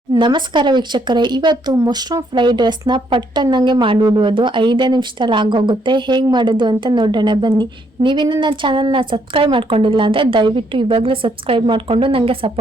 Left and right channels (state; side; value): normal; both; correlation 0.72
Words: ನಮಸ್ಕಾರ ವೀಕ್ಷಕರೇ, ಇವತ್ತು ಮಶ್ರೂಮ್ ಫ್ರೈಡ್ ರೈಸ್ನ ಪಟ್ಟನ್ನಂಗೆ ಮಾಡಿಬಿಡುವುದು 5 ನಿಮಿಷದಲ್ಲಿ ಆಗೋಗುತ್ತೆ. ಹೇಗೆ ಮಾಡೋದು ಅಂತ ನೋಡೋಣ ಬನ್ನಿ. ನೀವಿನ್ನು ನನ್ನ ಚಾನಲ್ನ ಸಬ್ಸ್ಕ್ರೈಬ್ ಮಾಡ್ಕೊಂಡಿಲ್ಲ ಅಂದರೆ ದಯವಿಟ್ಟು ಇವಾಗಲೇ ಸಬ್ಸ್ಕ್ರೈಬ್ ಮಾಡಿಕೊಂಡು ನನಗೆ